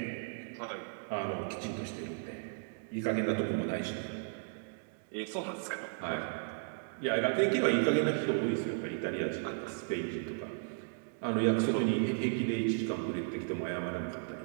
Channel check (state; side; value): silent; left; digital silence